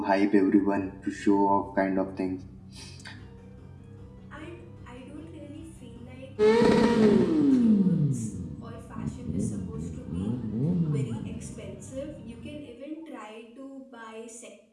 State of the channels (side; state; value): both; identical; correlation 1.00